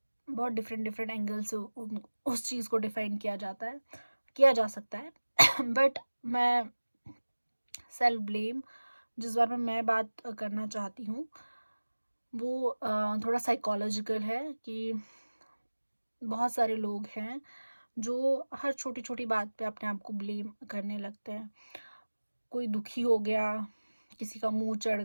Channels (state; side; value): inverted; both; correlation -1.00